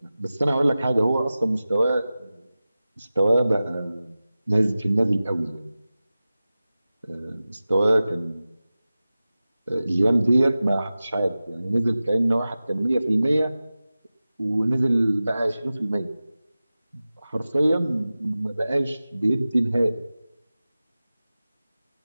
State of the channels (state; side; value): inverted; both; correlation -0.96